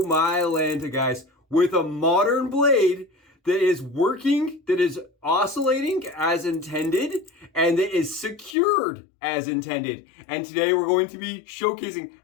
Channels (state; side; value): drops out; right; at 8.6 s